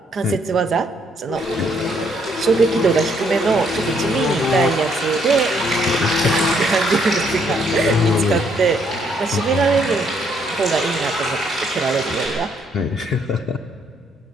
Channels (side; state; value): both; normal; correlation 0.70